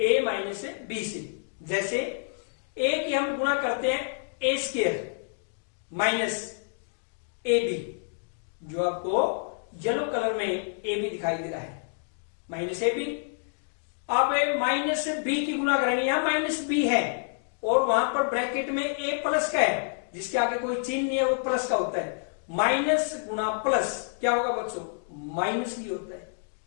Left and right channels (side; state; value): right; silent; digital silence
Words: माइनस बी से। जैसे a की हम गुणा करते हैं a square minus A B, जो आपको येलो कलर में ए बी दिखाई दे रहा है, माइनस ए बी। अब माइनस बी की गुणा करेंगे, यहां माइनस बी है और वहां पर ब्रैकेट में ए प्लस का है, जिसके आगे कोई चिन्ह नहीं है वो प्लस का होता है। माइनस गुणा प्लस क्या होगा बच्चों, माइनस ही होता है।